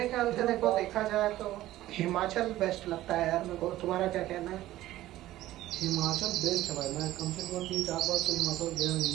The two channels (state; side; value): quieter; left; 15.1 dB